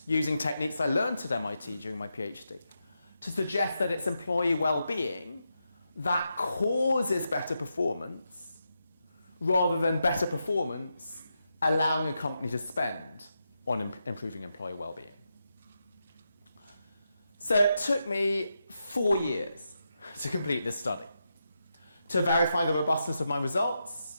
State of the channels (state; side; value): inverted; both; correlation -0.86